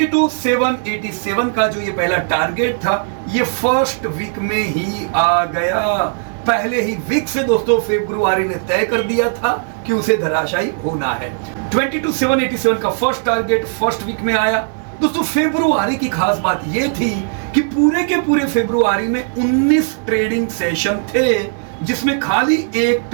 का जो ये पहला टारगेट था, ये फर्स्ट वीक में ही आ गया। पहले ही वीक से दोस्तों फरवरी ने तय कर दिया था कि उसे धराशायी होना है। 22,787 का फर्स्ट टारगेट फर्स्ट वीक में आया। दोस्तों फरवरी की खास बात यह थी कि पूरे के पूरे फरवरी में 19 ट्रेडिंग सेशन थे, जिसमें खाली एक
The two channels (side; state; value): left; silent; digital silence